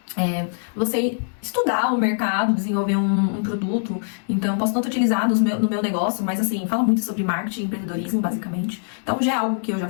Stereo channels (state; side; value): silent; right; digital silence